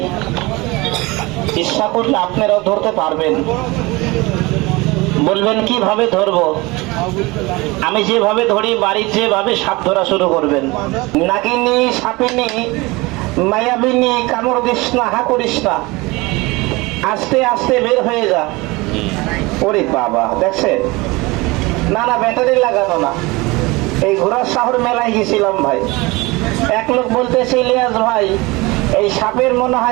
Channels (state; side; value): quieter; left; 23.2 dB